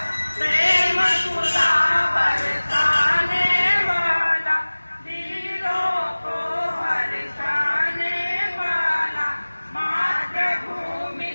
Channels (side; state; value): both; inverted; correlation -1.00